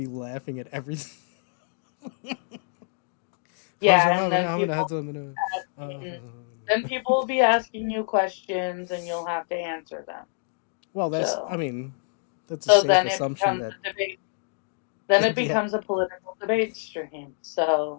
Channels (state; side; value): silent; right; digital silence